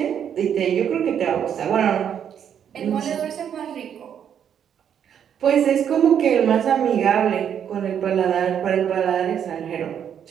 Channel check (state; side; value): quieter; left; 8.7 dB